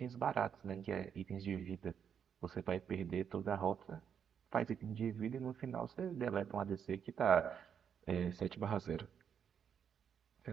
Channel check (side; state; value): left; quieter; 7.8 dB